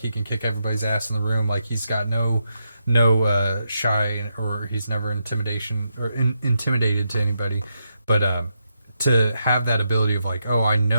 can kick everybody's ass in the room, like he's got no shy, or he's never intimidated to anybody, but to have that ability of like, oh, I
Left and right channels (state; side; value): inverted; both; correlation -0.82